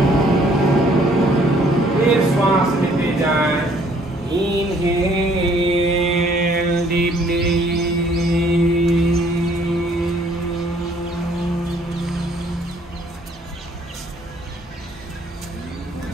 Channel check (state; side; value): normal; both; correlation 0.62